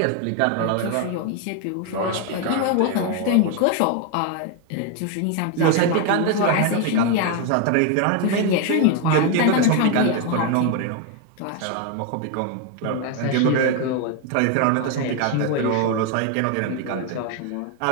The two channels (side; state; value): both; different; correlation 0.01